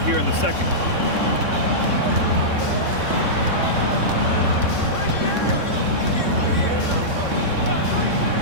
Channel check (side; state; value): left; late; 3.6 ms